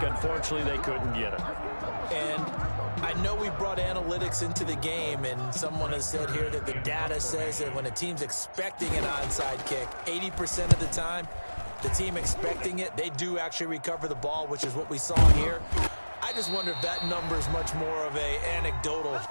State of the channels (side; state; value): both; inverted; correlation -1.00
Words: Unfortunately, they couldn't get it. And I know we brought analytics into the game, and someone has said here that the data says that when a team's expecting an onside kick, 80% of the time, the team expecting it, they do actually recover the ball, which is what we saw here. I just wonder if that number is much more of a anecdotal